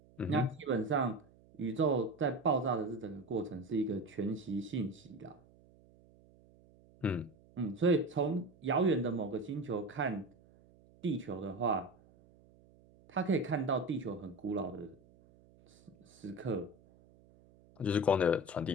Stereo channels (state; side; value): noise; right; hum, 27 dB below the sound